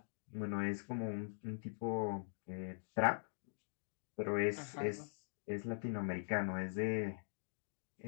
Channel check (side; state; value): right; silent; digital silence